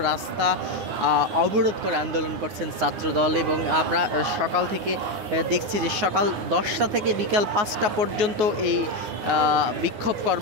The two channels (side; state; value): left; late; 9.5 ms